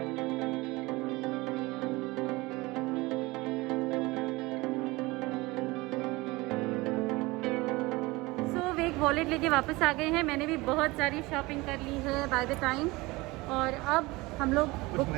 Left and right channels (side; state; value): left; quieter; 22.2 dB